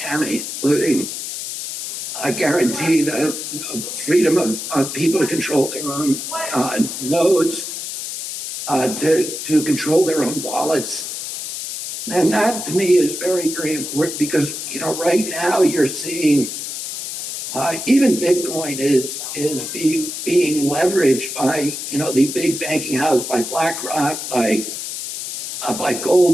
including guarantee the freedom of people to control their own nodes, to control their own wallets. And that, to me, is very, very important because, right now you're seeing even Bitcoin is being leveraged by, the big banking house, by BlackRock, by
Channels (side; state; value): left; noise; hiss, 6 dB below the sound